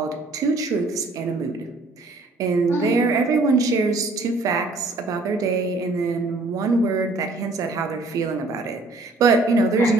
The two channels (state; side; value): quieter; left; 3.2 dB